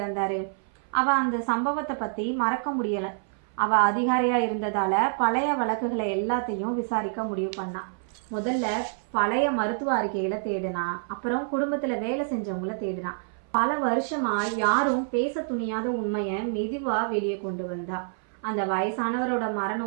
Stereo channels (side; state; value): left; silent; 57 dB below the other